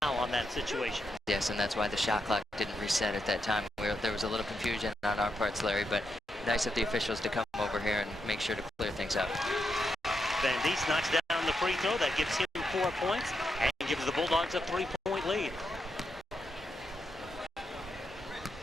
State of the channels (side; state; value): both; normal; correlation 0.83